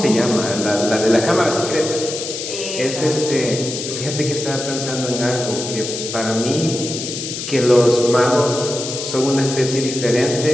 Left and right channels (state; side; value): noise; left; hiss, 6 dB below the sound